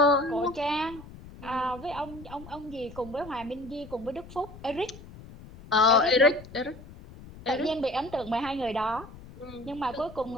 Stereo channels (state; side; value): noise; left; rumble, 17 dB below the sound